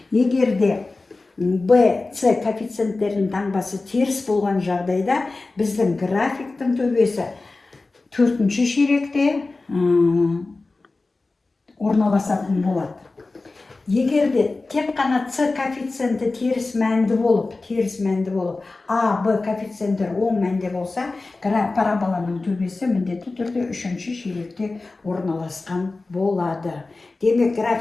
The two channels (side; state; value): right; quieter; 3.5 dB